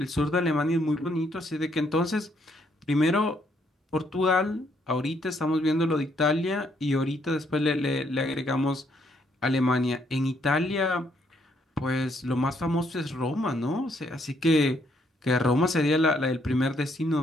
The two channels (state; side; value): normal; both; correlation 0.71